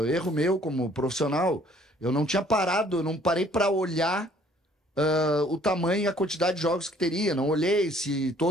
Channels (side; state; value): both; normal; correlation 0.59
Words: erro meu como profissional, eu não tinha parado, eu não parei para olhar o tamanho e a quantidade de jogos que teria. Não olhei se